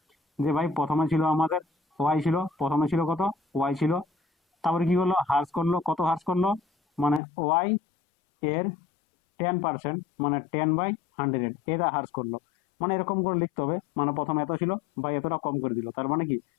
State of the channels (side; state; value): right; drops out; at 7.2 s